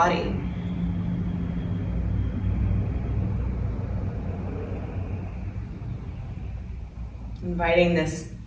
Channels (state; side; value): identical; both; correlation 1.00